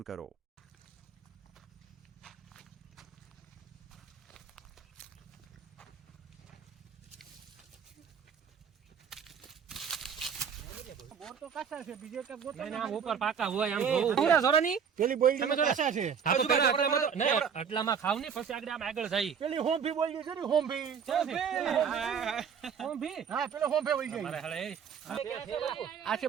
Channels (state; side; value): quieter; left; 7.1 dB